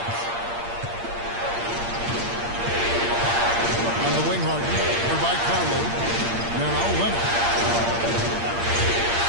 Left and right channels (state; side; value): late; left; 8.6 ms